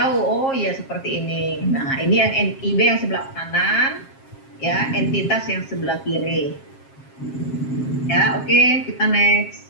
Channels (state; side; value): late; right; 7.5 ms